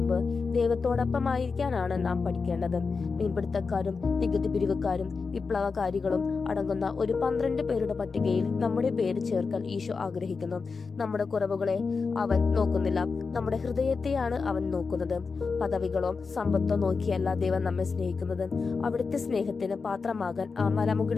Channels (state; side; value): quieter; right; 4.8 dB